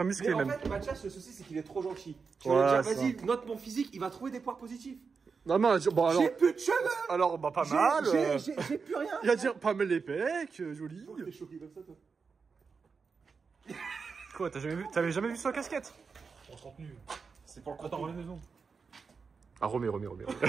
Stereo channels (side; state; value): left; quieter; 5.2 dB